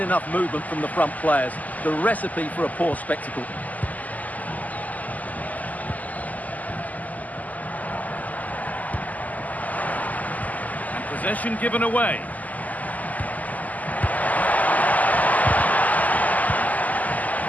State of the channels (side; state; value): right; late; 0.078 ms